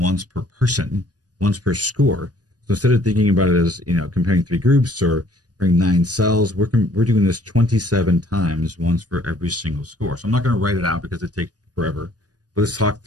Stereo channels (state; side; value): late; left; 0.68 ms